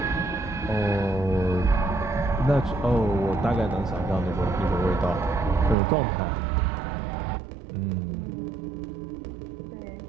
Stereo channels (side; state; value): left; drops out; at 5.8 s